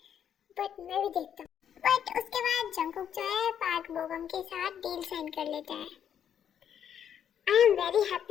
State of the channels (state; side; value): quieter; right; 9.0 dB